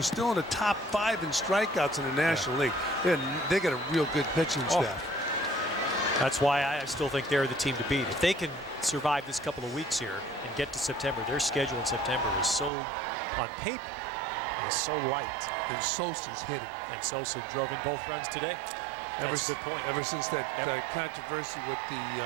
still in the top 5 in strikeouts in the National League. They got a real good pitching staff. That's why I still think they're the team to beat. If they can survive this couple of weeks here and get to September, their schedule in September is so, on paper, is so light. And Sosa's hitting. And Sosa drove in both runs today. That's a good point. Ever since that controversy with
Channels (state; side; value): drops out; left; at 12.7 s